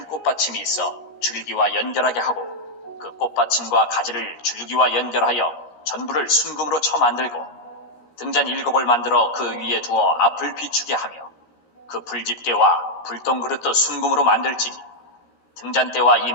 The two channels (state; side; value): late; right; 17 ms